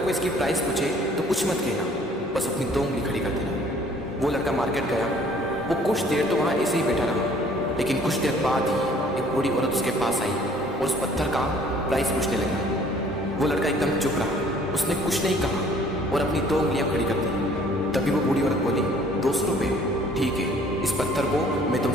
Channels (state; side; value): normal; both; correlation 0.56